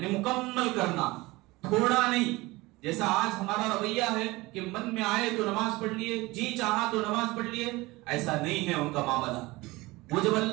مکمل کرنا، تھوڑا نہیں. جیسا آج ہمارا رویہ ہے کہ من میں آئے تو نماز پڑھ لیے، جی چاہا تو نماز پڑھ لیے، ایسا نہیں ہے ان کا معاملہ. وہ جب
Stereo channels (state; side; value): quieter; left; 21.4 dB